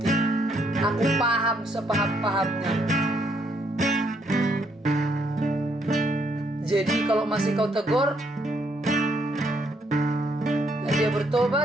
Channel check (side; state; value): both; normal; correlation 0.72